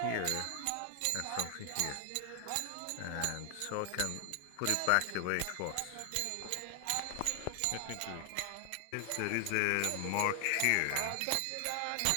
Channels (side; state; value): both; different; correlation 0.00